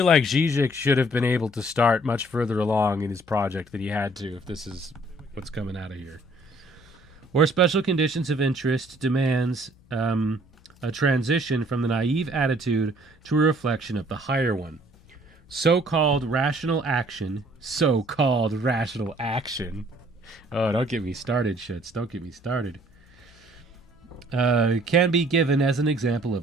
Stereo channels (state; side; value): normal; both; correlation 0.60